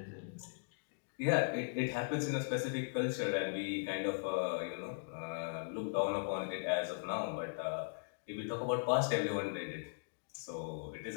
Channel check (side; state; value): right; silent; digital silence